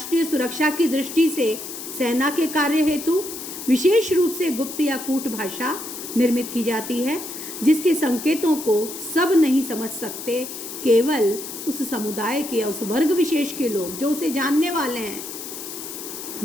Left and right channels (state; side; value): noise; left; hiss, 9 dB below the sound